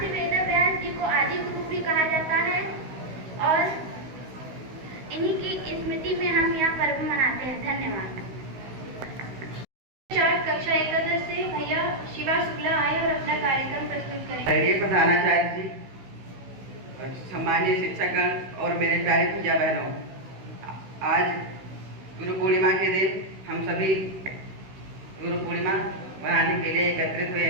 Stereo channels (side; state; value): left; late; 16 ms